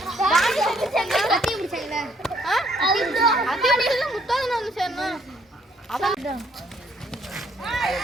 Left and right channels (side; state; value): both; normal; correlation 0.67